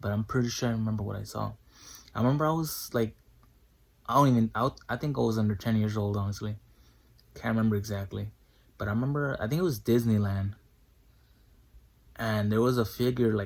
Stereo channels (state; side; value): identical; both; correlation 1.00